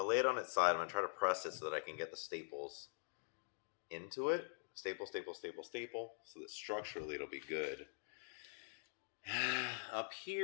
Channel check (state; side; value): silent; right; digital silence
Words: lay it on its side. I'm going to try to press it so that I can get the staples into it. Staple, staple, staple, staple, so that structurally it'll be good. Up